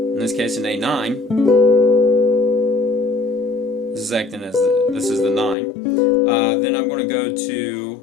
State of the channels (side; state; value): right; drops out; at 5.6 s